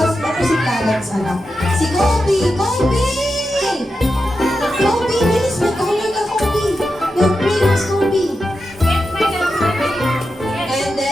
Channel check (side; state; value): both; normal; correlation 0.89